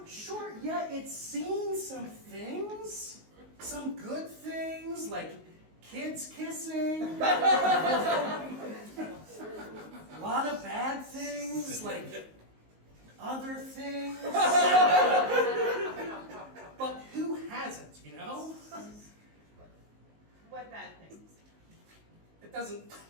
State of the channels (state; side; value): late; left; 19 ms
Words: sure, yeah, it's seen some things. Some good things, like kids kissing. A lot of bad things, like other things. But who hasn't, you know? What bad things? It doesn't